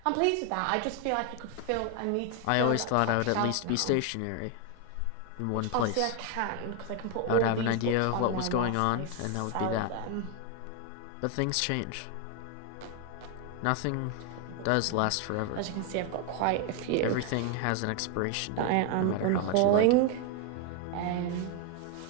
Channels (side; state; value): both; different; correlation 0.01